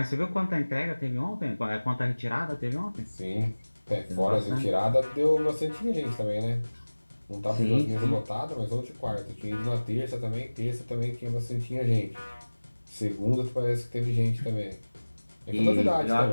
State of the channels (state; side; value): inverted; both; correlation -1.00